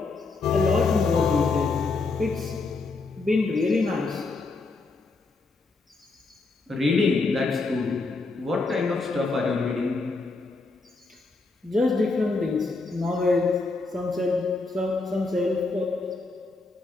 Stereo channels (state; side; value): quieter; right; 3.8 dB